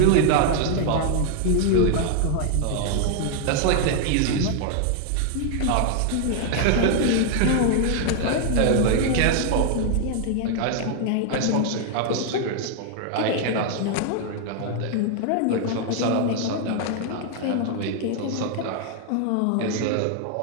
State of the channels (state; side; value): different; both; correlation 0.00